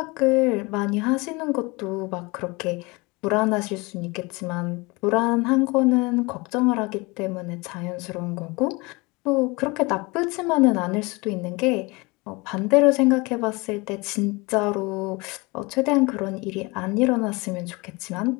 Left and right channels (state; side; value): quieter; right; 25.5 dB